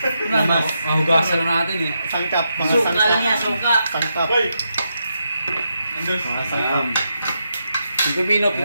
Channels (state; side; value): inverted; both; correlation -0.83